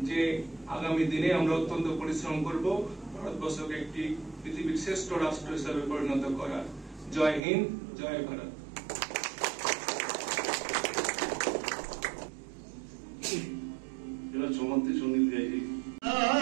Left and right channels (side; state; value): left; drops out; at 7.4 s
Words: যে আগামী দিনে আমরা অত্যন্ত পরিশ্রম করব ভারতবর্ষকে একটি পৃথিবীর শ্রেষ্ঠ রাষ্ট্র হিসেবে পরিণত করার। জয় হিন্দ, জয় ভারত। সমাপ্তি সঙ্গীত গাইছি।